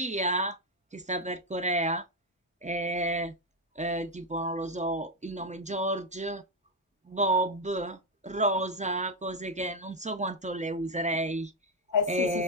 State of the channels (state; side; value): normal; both; correlation 0.04